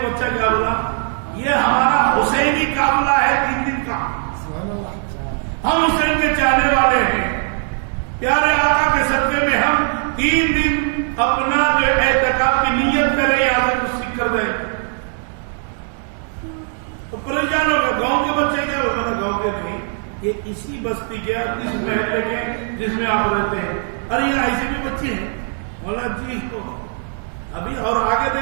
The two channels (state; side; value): silent; left; 56 dB below the other